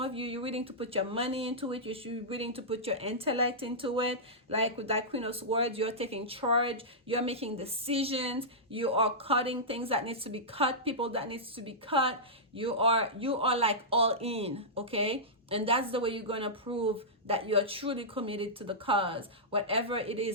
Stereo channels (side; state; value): both; normal; correlation -0.13